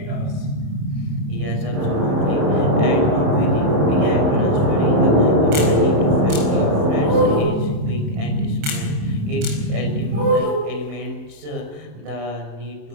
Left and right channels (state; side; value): late; left; 27 ms